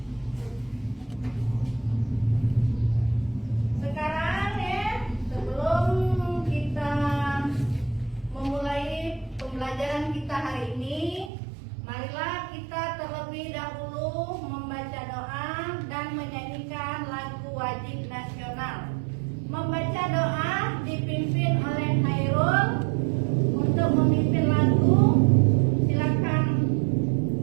Sekarang ya, sebelum kita memulai pembelajaran kita hari ini, marilah kita terlebih dahulu membaca doa dan menyanyikan lagu wajib nasional. Membaca doa dipimpin oleh Hairul. Untuk memimpin lagu, silakan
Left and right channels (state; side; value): drops out; left; at 11.3 s